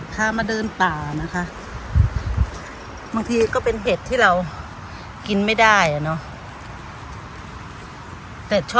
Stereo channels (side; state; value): both; identical; correlation 1.00